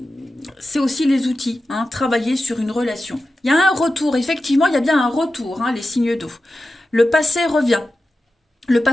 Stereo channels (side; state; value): both; normal; correlation 0.92